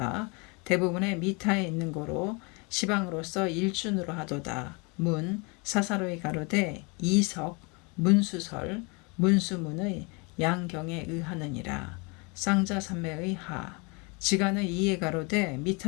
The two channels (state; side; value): quieter; right; 30.2 dB